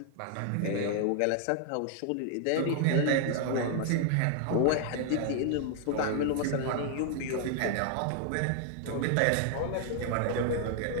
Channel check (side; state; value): both; different; correlation 0.00